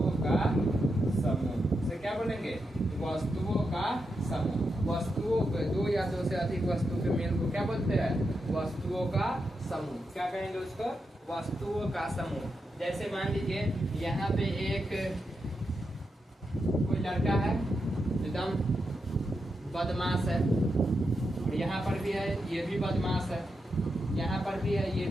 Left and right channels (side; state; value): both; normal; correlation 0.86